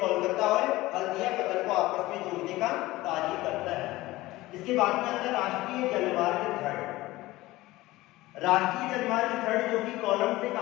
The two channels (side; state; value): right; quieter; 18.5 dB